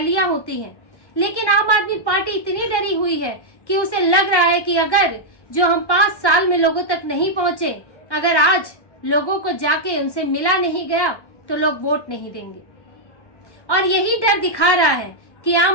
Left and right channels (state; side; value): late; right; 1.1 ms